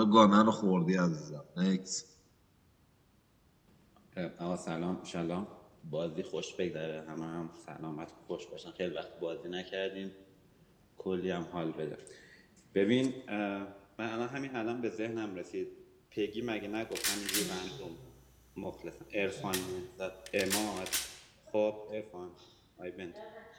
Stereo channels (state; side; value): identical; both; correlation 1.00